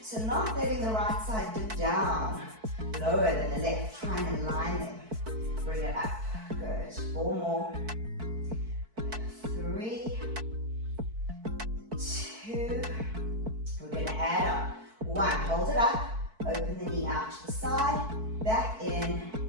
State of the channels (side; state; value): left; late; 4.6 ms